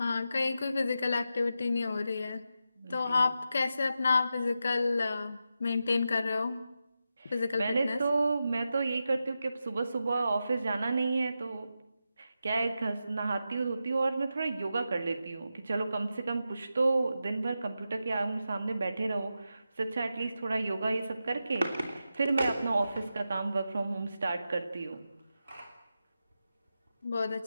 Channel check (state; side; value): inverted; both; correlation -0.89